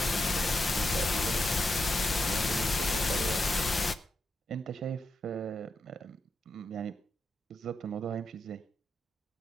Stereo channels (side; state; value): both; normal; correlation 0.85